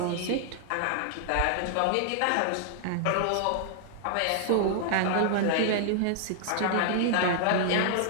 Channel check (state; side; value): different; both; correlation 0.00